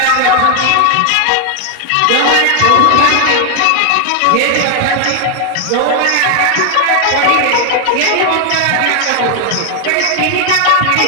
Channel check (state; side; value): different; both; correlation 0.00